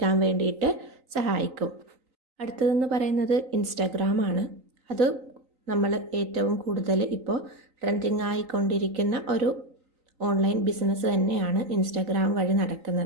വേണ്ടിയിട്ട് സഹായിക്കും. അടുത്തതെന്ന് പറയുന്നത് ഇൻസ്റ്റാഗ്രാമാണ്. അത് നമ്മൾ ഏറ്റവും കൂടുതൽ ഇപ്പോൾ ട്രെൻഡിങ് ആയിക്കൊണ്ടിരിക്കുന്ന ഒരു ഓൺലൈൻ ബിസിനസ് തന്നെയാണ് ഇൻസ്റ്റാഗ്രാം വഴി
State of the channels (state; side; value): late; left; 3.9 ms